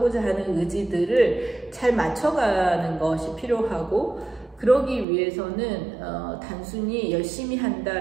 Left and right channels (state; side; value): drops out; left; at 5.1 s